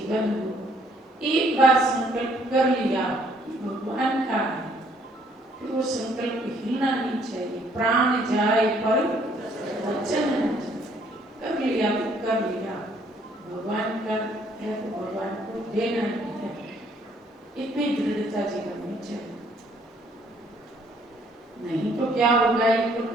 हो, एक बार संकल्प कर लिया भगवान का है, फिर वो संकल्प हिलना नहीं चाहिए। प्राण जाए पर वचन कर लिया तो कर लिया, भगवान का है तो भगवान को देना ही है। इतनी दृढ़ता जीवन में चाहिए, नहीं तो क्या होगा। ये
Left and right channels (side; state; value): both; normal; correlation 0.65